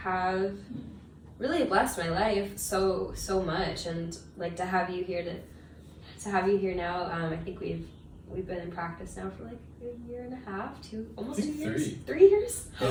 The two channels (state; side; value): identical; both; correlation 1.00